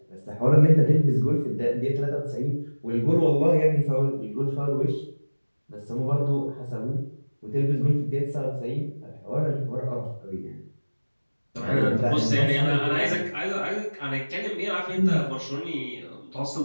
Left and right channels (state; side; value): inverted; both; correlation -1.00